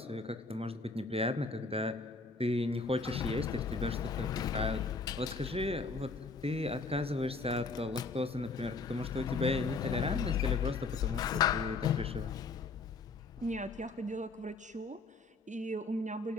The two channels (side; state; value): right; quieter; 3.8 dB